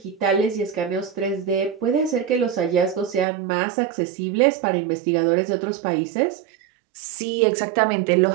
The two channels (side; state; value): left; drops out; at 3.2 s